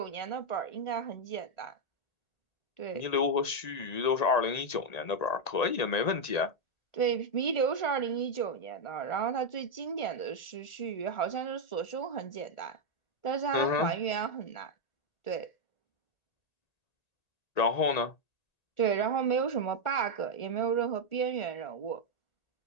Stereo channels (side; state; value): right; late; 1.9 ms